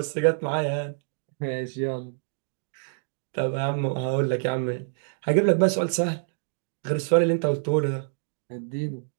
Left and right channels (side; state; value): left; silent; digital silence